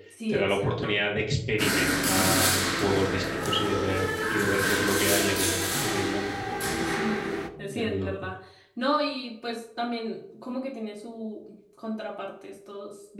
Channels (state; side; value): identical; both; correlation 1.00